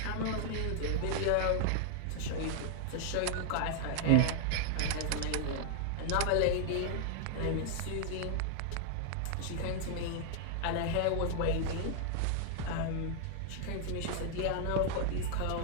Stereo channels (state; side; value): different; both; correlation 0.00